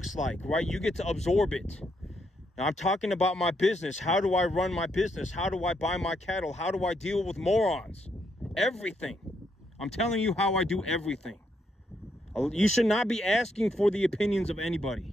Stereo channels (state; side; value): normal; both; correlation 0.77